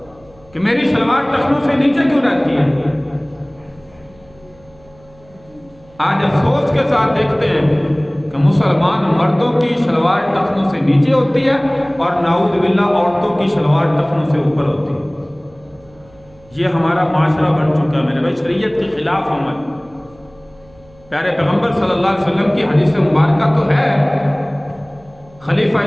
کہ میری شلوار ٹخنوں سے نیچے کیوں رہتی ہے۔ آج افسوس کے ساتھ دیکھتے ہیں کہ مسلمان مردوں کی شلوار ٹخنوں سے نیچے ہوتی ہے اور نعوذ باللہ عورتوں کی شلوار ٹخنوں سے اوپر ہوتی ہے۔ یہ ہمارا معاشرہ بن چکا ہے میرے بھائی، شریعت کے خلاف عمل۔ پیارے پیغمبر صلی اللہ علیہ وسلم کی حدیث مبارکہ تو ہے، خلیفہ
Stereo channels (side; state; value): right; noise; hum, 28 dB below the sound